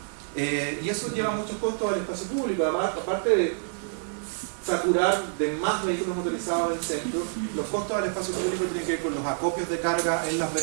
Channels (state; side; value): silent; left; digital silence